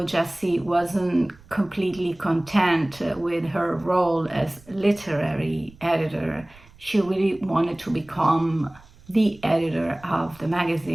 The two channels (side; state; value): right; noise; rumble, 25 dB below the sound